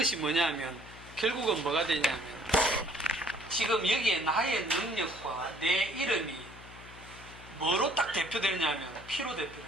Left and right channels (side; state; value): left; noise; hum, 18 dB below the sound